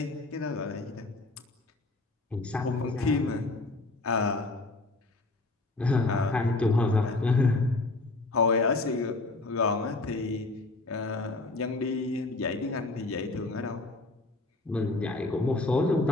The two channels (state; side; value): quieter; right; 3.1 dB